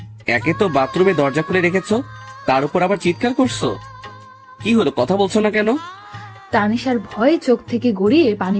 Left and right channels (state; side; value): identical; both; correlation 1.00